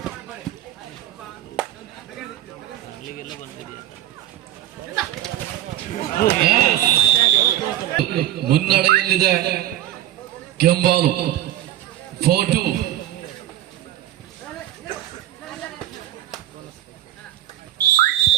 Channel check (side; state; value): left; quieter; 13.3 dB